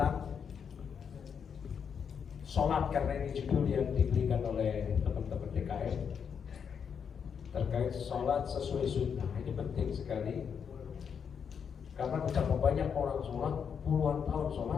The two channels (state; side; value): quieter; right; 7.0 dB